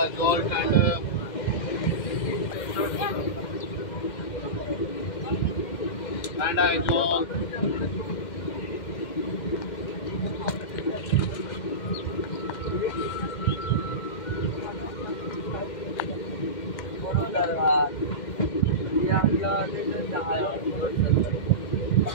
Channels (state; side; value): late; right; 2.1 ms